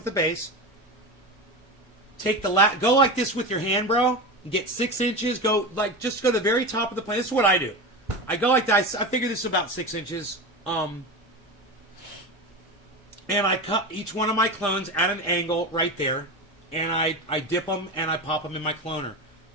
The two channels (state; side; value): normal; both; correlation 0.23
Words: the base. Take the go like this with your hand, bro. And get 6 inches. Go like just go to the very top of the plant. This is what I do. I go like that. I figure this is about 6 inches. And I cut each one of my clones at an angle right there. And I dip them and I pop them in my cloner.